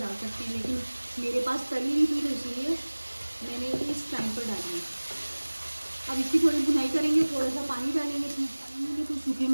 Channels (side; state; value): both; inverted; correlation -1.00